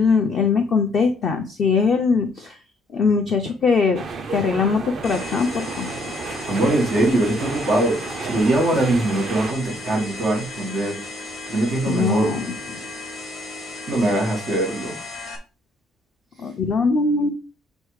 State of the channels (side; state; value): both; normal; correlation 0.66